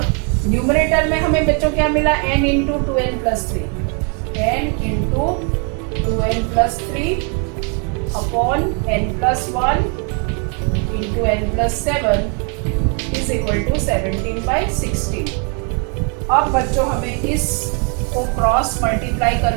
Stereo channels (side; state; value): left; quieter; 38.3 dB